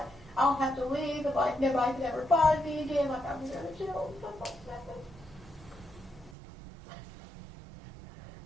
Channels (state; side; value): drops out; left; at 6.4 s